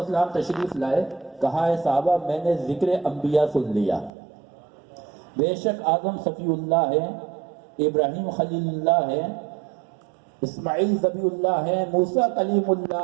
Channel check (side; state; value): left; drops out; at 4.1 s